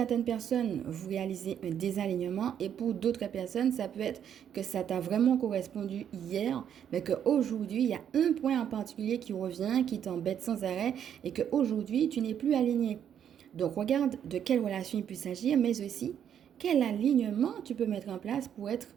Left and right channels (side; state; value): left; quieter; 9.1 dB